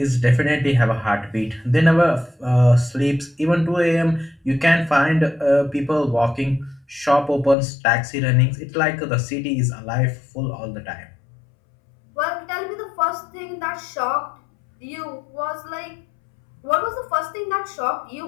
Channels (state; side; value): drops out; right; at 7.6 s